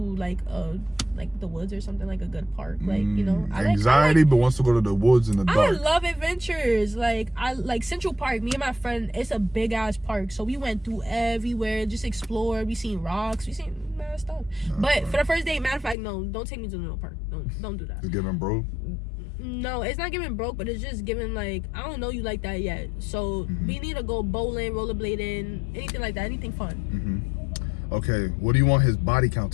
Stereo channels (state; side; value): drops out; right; at 16.0 s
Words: like the woods or something, like a good park, like, you know, anxiety, but wants to go to the woods in the dark. I love adventures. Like, I like Central Park. Me and my friend, it's a big ass park, so we went through everywhere, just explored. We seen rocks, we seen mad stuff. But for the first date, matter of fact, no, don't take me to the park. Don't do that. It's giving broke. No, it's not giving broke, but it's just giving like, I don't know you like that yet. So we need to go bowling, rollerblading, anything like that, anything fun. Okay, what do you want his body count